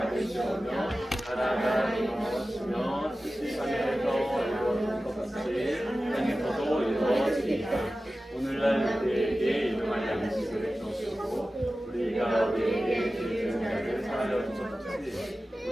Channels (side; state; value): both; normal; correlation 0.95